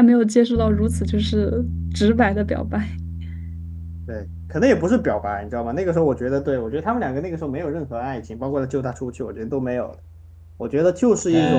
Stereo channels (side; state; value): both; identical; correlation 1.00